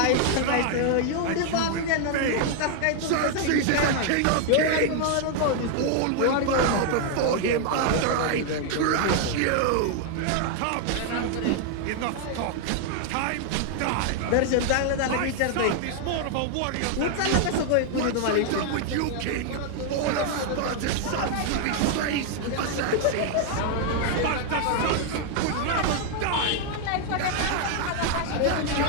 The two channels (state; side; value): different; both; correlation 0.00